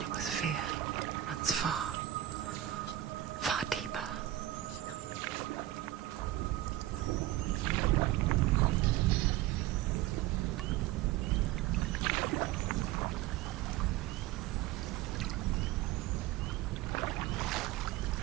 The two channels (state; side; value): quieter; left; 14.3 dB